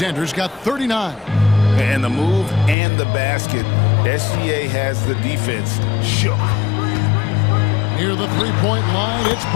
got 39. And the move and the basket, SGA has the defense shook. Near the three-point line, it's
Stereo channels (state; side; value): drops out; right; at 2.8 s